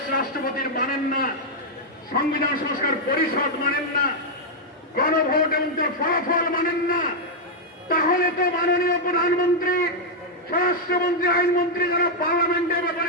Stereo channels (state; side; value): normal; both; correlation -0.02